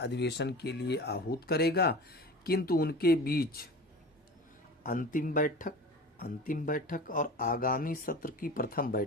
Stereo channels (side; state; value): both; normal; correlation 0.35